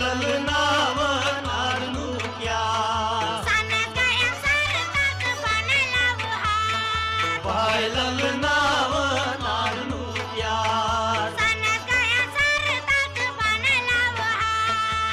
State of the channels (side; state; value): both; identical; correlation 1.00